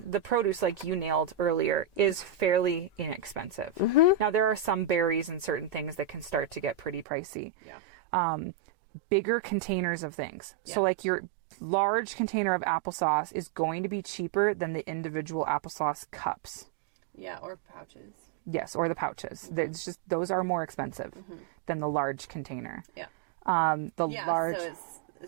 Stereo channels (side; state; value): left; drops out; at 7.1 s